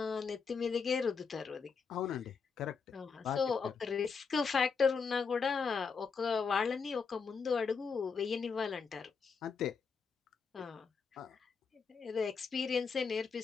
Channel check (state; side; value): quieter; right; 5.5 dB